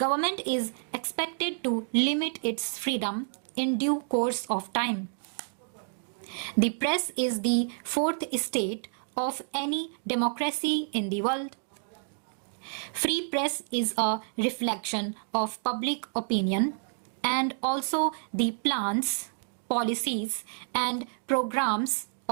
is expected to limit its freedom in due course of time. The press is the fourth estate of any democracy in the world. Free press is a reflection of public opinion and also the plans, policies, and programs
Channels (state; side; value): silent; left; digital silence